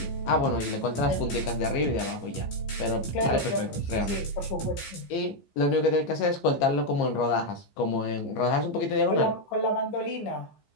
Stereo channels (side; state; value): right; late; 15 ms